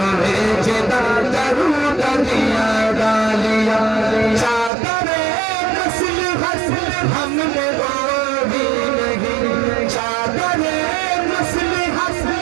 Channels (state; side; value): drops out; left; at 4.7 s